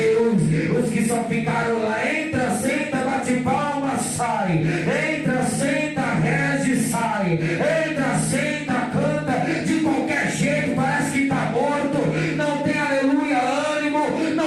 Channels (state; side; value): identical; both; correlation 1.00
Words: os que só ficaram lá. Entra, senta, bate palma, sai. Entra, senta, reze, sai. Entra, senta, canta. De qualquer jeito, parece que está morto. Não tem aleluia, ânimo.